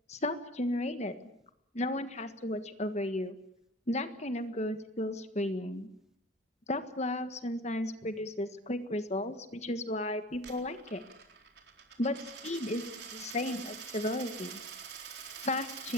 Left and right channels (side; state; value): both; normal; correlation 0.41